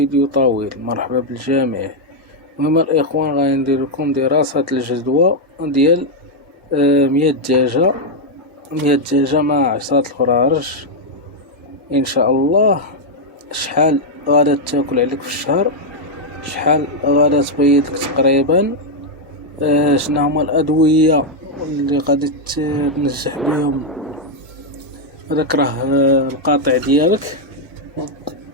طويل. مرحبا بالجميع. المهم الاخوان غادي ندير لكم دراسة الجدوى ديال 100 دجاجة 100 دجاجة مع 10 الفرارج ان شاء الله. شحال غادا تاكل عليك في الشهر، شحال غادا تبيض لك تقريبا، شنو هما الادوية اللي غادي تنجح بهم هذاك راه القاطع ديالك.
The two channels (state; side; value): normal; both; correlation -0.01